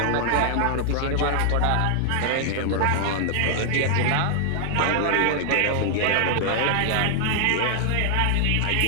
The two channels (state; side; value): different; both; correlation 0.00